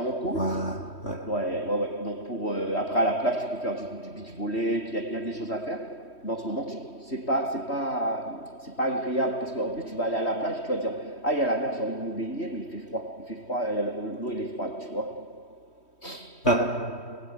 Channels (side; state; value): right; late; 3.1 ms